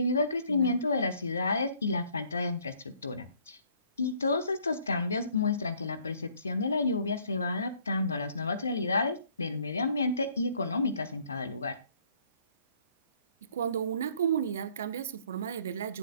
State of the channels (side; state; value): both; inverted; correlation -0.62